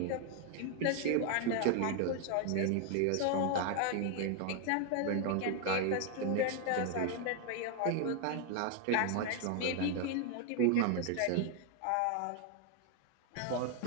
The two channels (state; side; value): different; both; correlation 0.00